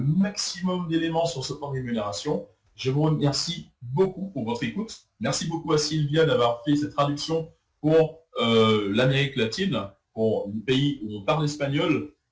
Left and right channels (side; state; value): both; identical; correlation 1.00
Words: maximum d'éléments sur ce plan de rémunération. Je vous remercie beaucoup pour votre écoute. Merci beaucoup à Sylvia d'avoir fait cette traduction pour l'Amérique latine, pour les pays où on parle espagnol.